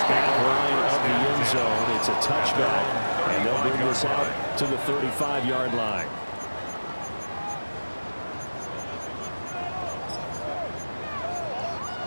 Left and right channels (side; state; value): both; inverted; correlation -1.00